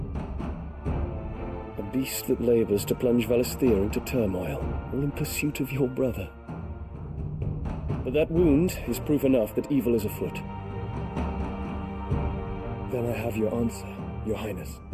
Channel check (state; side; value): identical; both; correlation 1.00